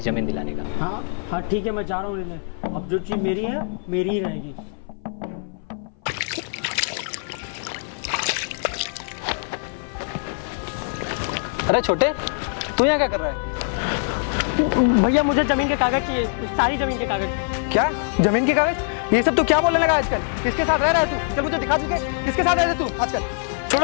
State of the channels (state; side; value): silent; right; 59 dB below the other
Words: जमीन दिलाने का। हाँ हाँ ठीक है, मैं जा रहा हूँ लेने। अब जो चीज मेरी है मेरी ही रहेगी। अरे छोटे, तू यहाँ क्या कर रहा है? भैया, मुझे जमीन के कागज चाहिए, सारी जमीन के कागज। क्या जमीन के कागज? ये सब तू क्या बोलने लगा आजकल? किसके साथ रह रहा है तू? चल मुझे दिखा चुके, किसके साथ रह रहा है तू आजकल?